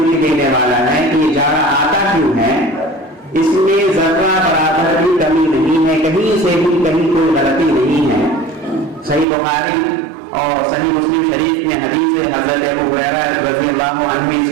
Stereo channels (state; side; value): drops out; left; at 9.2 s